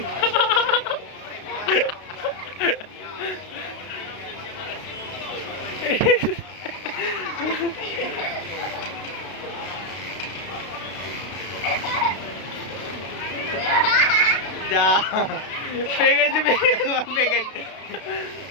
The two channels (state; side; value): late; right; 32 ms